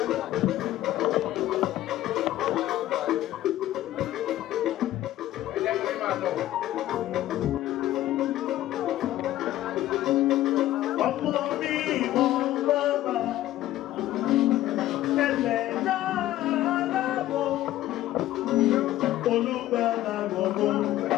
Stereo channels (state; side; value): quieter; right; 14.4 dB